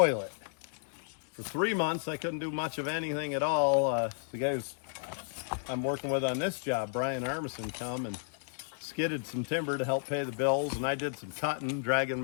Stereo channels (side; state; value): right; silent; digital silence